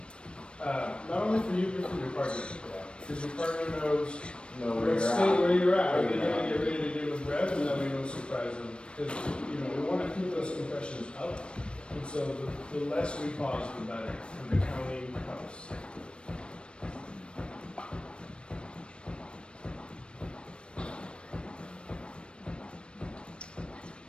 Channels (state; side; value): late; right; 0.056 ms